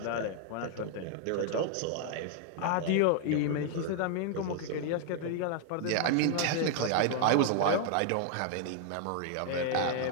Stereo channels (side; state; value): both; different; correlation 0.00